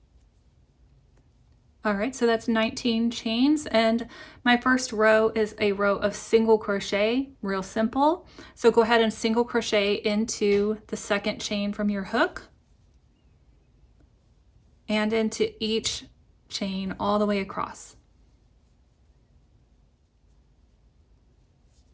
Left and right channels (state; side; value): identical; both; correlation 1.00